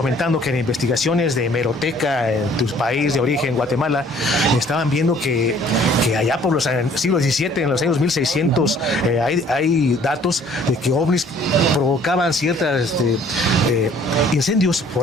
que en investigaciones de hemeroteca en tu país de origen, Guatemala, estaban viendo que allá por los siglos XVII, en los años 1600, hay datos de que ovnis provocaban ciertas incendios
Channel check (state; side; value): normal; both; correlation 0.57